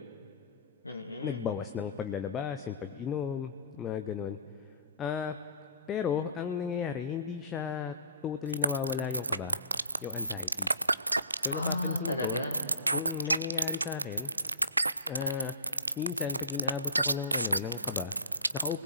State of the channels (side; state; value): both; inverted; correlation -0.40